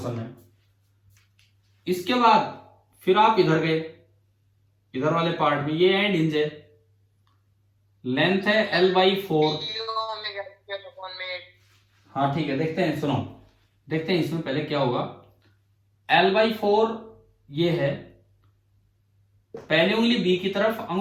में। इसके बाद फिर आप इधर गए, इधर वाले पार्ट में ये एंड हिंज है, लेंथ है L/4। हाँ ठीक है, देखते हैं, सुनो देखते हैं इसमें पहले क्या होगा। L/4 ये है, पहली उंगली बी की तरफ,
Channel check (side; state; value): both; identical; correlation 1.00